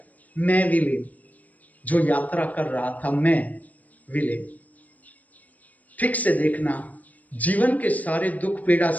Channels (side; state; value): right; late; 0.075 ms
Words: मैं विलीन, जो यात्रा कर रहा था, मैं विलीन। ठीक से देखना, जीवन के सारे दुख, पीड़ा,